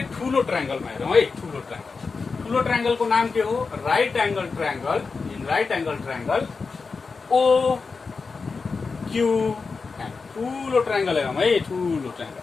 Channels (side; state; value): right; quieter; 4.6 dB